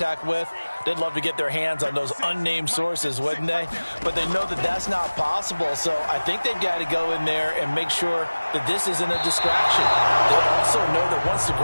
with. They'd love to get their hands on those unnamed sources, wouldn't they? But they know that that's not possible, so I think they've got to go in there and make sure that this isn't a distraction. They also know that once the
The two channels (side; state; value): both; inverted; correlation -1.00